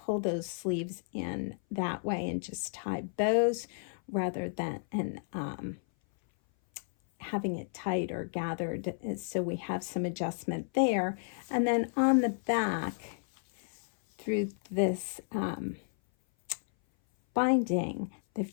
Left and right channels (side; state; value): right; silent; 56 dB below the other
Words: those sleeves in that way and just tie bows rather than having it tight or gathered. So we have some adjustment there. And then on the back, through this binding, they've